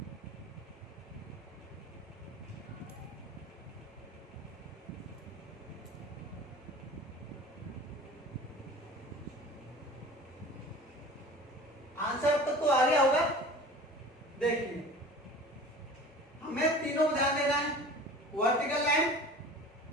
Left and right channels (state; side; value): normal; both; correlation 0.41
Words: आंसर अब तक तो आ गया होगा। देखिए हमें तीनों को ध्यान देना है, वर्टिकल लाइन,